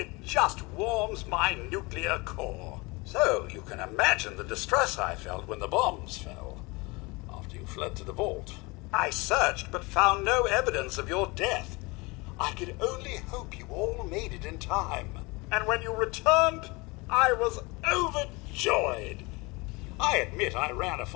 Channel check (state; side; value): quieter; right; 25.6 dB